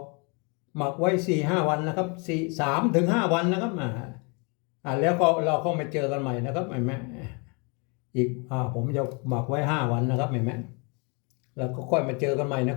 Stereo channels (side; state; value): right; quieter; 33.1 dB